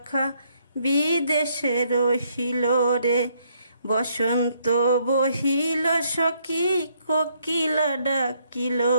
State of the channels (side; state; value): both; inverted; correlation -0.70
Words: বিদেশে রহিল রে। বসন্ত বহিল সখী কোকিলা ডাকিল